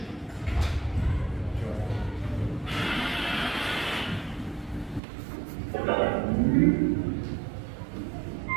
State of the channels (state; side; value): drops out; left; at 5.0 s